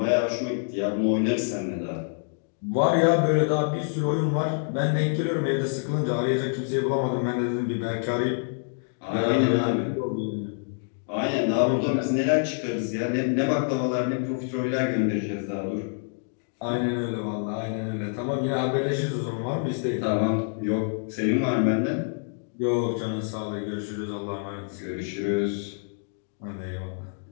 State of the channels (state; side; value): silent; right; digital silence